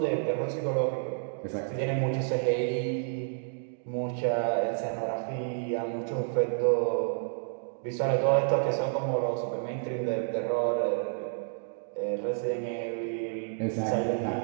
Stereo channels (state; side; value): silent; left; digital silence